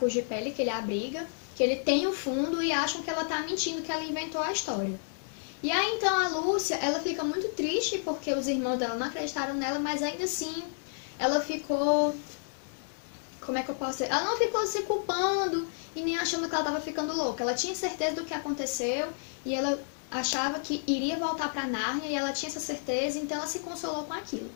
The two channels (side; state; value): right; silent; digital silence